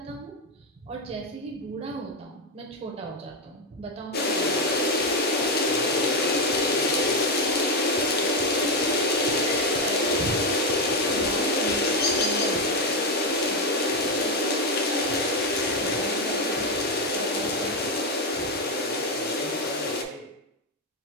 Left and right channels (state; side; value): normal; both; correlation 0.07